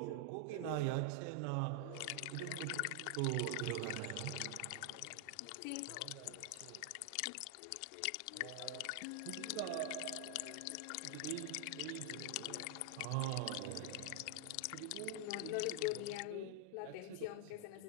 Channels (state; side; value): different; both; correlation 0.00